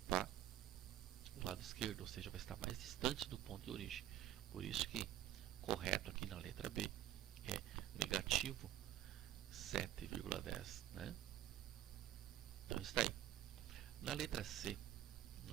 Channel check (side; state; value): left; quieter; 12.8 dB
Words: o lado esquerdo, ou seja, vai estar mais distante do ponto de origem. Por isso que correto aqui na letra B é negativo 7,10, né? Então está aí. Na letra C,